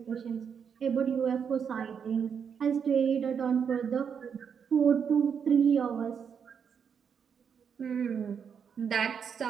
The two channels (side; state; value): left; quieter; 7.1 dB